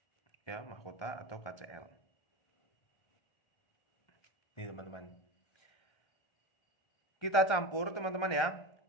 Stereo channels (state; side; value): late; right; 1.3 ms